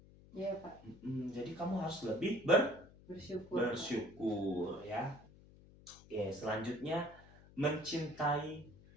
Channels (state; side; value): noise; left; hum, 22 dB below the sound